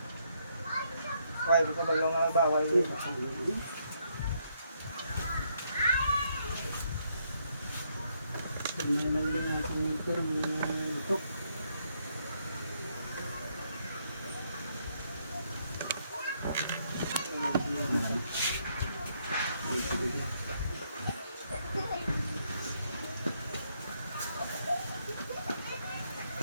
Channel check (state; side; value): inverted; both; correlation -0.74